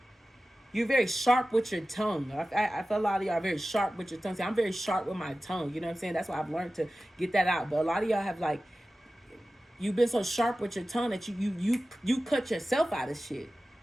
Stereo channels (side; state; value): both; normal; correlation 0.95